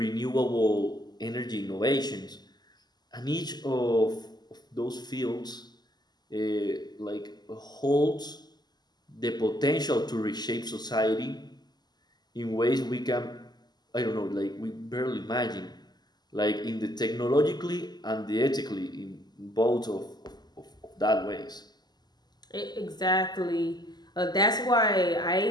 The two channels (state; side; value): late; right; 0.20 ms